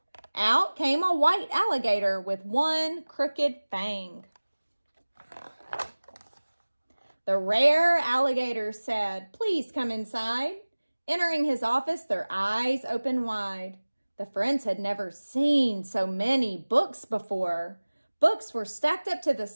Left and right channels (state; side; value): inverted; both; correlation -1.00